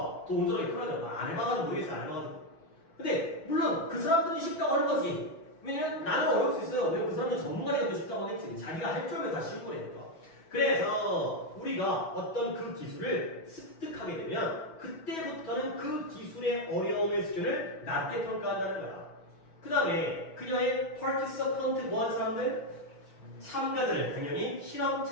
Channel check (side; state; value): right; late; 6.2 ms